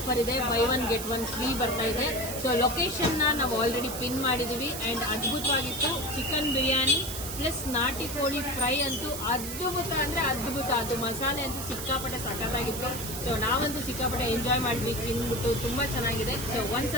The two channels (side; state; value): right; noise; hiss, 7 dB below the sound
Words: ಇದೆ. ಬೈ 1 get 1 ಫ್ರೀ ಬರ್ತಾ ಇದೆ. ಸೊ ಲೊಕೇಶನ್ ನಾವು ಆಲ್ರೆಡಿ ಪಿನ್ ಮಾಡಿದೀವಿ. ಅಂಡ್ ಅದ್ಭುತವಾಗಿತ್ತು. ಚಿಕನ್ ಬಿರಿಯಾನಿ ಪ್ಲಸ್ ನಾಟಿ ಕೋಳಿ ಫ್ರೈ ಅಂತೂ ಅದ್ಭುತ ಅಂದ್ರೆ ಅದ್ಭುತ. ಅದು ಮಸಾಲೆ ಅಂತೂ ಸಿಕ್ಕಾಪಟ್ಟೆ ಸಖತ್ತಾಗಿತ್ತು. ಸೊ ನಾವಂತೂ ಸಿಕ್ಕಾಪಟ್ಟೆ ಎಂಜಾಯ್ ಮಾಡಿದ್ವಿ ತಿನ್ಬಿಟ್ಟು. ತುಂಬಾ ಚೆನ್ನಾಗಿದೆ. ಸೊ